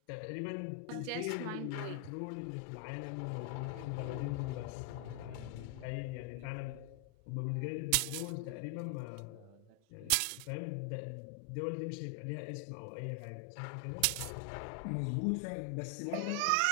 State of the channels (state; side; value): different; both; correlation 0.00